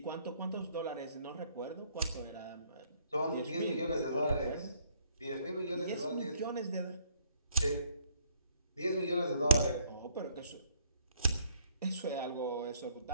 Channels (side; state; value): both; inverted; correlation -0.66